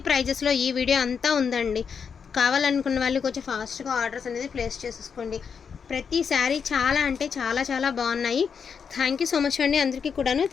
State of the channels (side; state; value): right; quieter; 6.5 dB